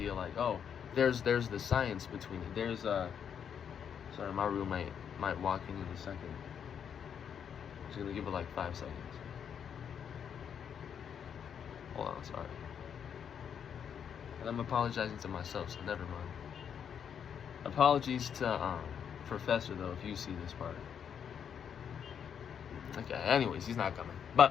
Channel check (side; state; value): right; quieter; 7.9 dB